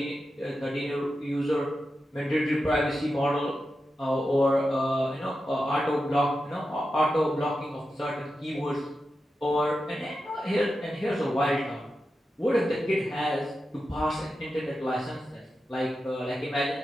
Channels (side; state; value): both; normal; correlation 0.90